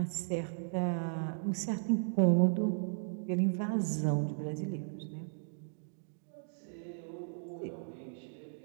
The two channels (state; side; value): silent; left; digital silence